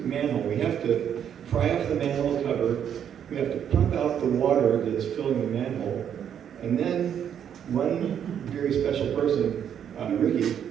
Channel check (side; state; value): left; quieter; 8.9 dB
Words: manhole. We have to pry off the manhole cover. We have to pump out the water that's filling the manhole. And then one very special person, Ricky,